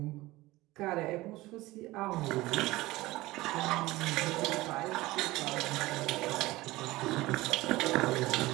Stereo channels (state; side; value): quieter; left; 19.1 dB